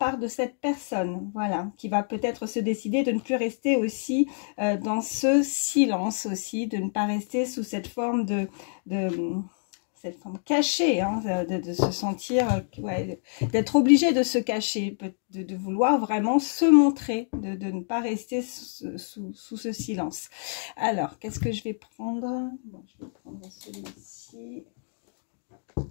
de cette personne, voilà, qui va peut-être se décider de ne plus rester aussi dans ce silence aussi, de ne pas rester sous cette forme cette forme cachée, hein, de se sentir, ouais, d'être obligé de se cacher, de vouloir vraiment se montrer, de ne pas rester sous ce silence. Alors, qu'est-ce que je vais prendre? Bon, je vais prendre celui-ci.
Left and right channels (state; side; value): silent; right; digital silence